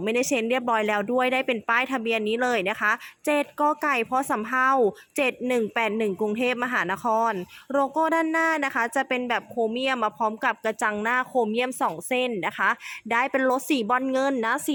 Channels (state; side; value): identical; both; correlation 1.00